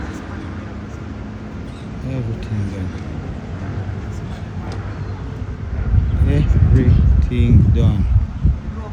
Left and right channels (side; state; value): both; identical; correlation 1.00